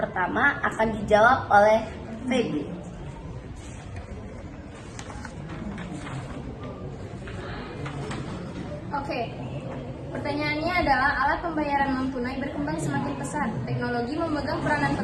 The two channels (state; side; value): identical; both; correlation 1.00